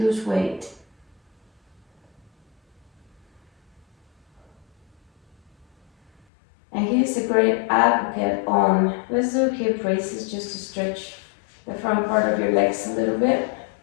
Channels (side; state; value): right; drops out; at 6.1 s